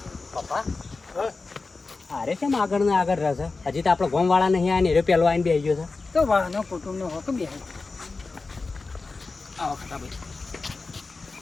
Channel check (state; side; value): quieter; right; 3.9 dB